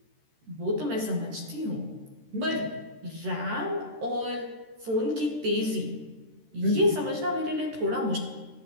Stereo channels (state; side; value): late; left; 13 ms